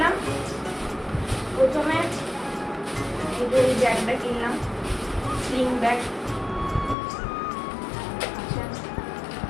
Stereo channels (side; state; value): right; drops out; at 7.0 s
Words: প্রথমে এই ব্যাগটা কিনলাম, স্লিং ব্যাগ। আচ্ছা,